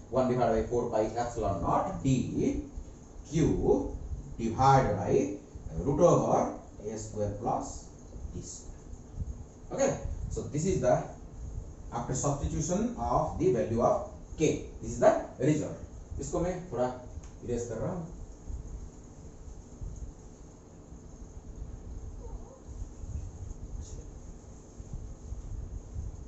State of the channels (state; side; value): identical; both; correlation 1.00